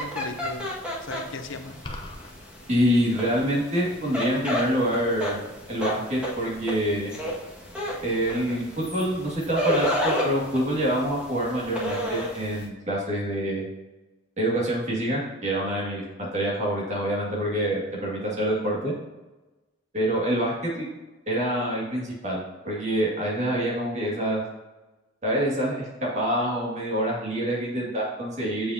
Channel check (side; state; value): both; normal; correlation 0.36